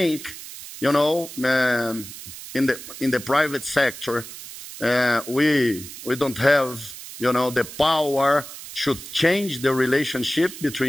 in the private sector, we don't have, the power to change the relationship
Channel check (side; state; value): right; noise; hiss, 13 dB below the sound